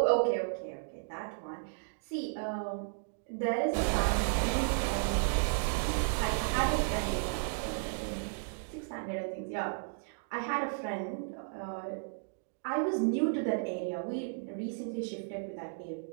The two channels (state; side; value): silent; left; digital silence